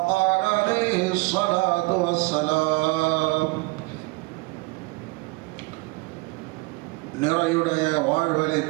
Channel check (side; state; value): left; quieter; 25.5 dB